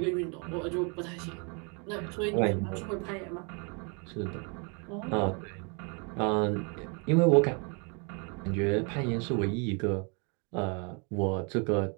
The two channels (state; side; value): quieter; left; 35.0 dB